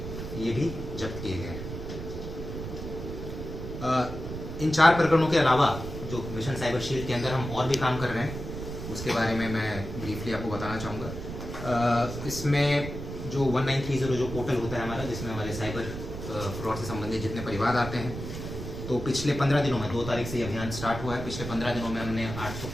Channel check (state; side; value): noise; right; rumble, 8 dB below the sound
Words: ये भी जब्त किए गए हैं। इन 4 प्रकरणों के अलावा जो मिशन साइबर शील्ड के अंदर हम और भी काम कर रहे हैं, उसके बारे में मैं ब्रीफली आपको बताना चाहूँगा। इसमें जो 1930 जो पोर्टल होता है हमारा, जिसमें हमारे साइबर फ्रॉड से संबंधित जितने परिवाद आते हैं, तो पिछले 15 दिनों में 2 तारीख से ये अभियान स्टार्ट हुआ है। पिछले 15 दिनों में हमने